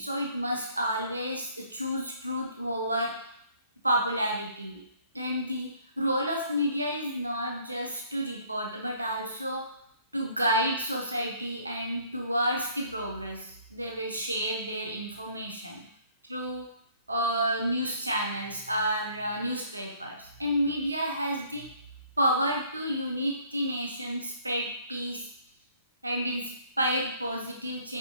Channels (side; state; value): both; inverted; correlation -0.60